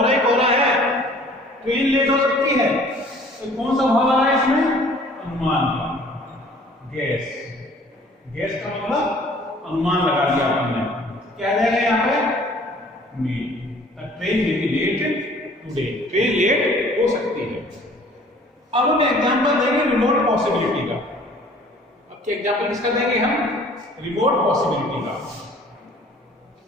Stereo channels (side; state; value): both; normal; correlation 0.53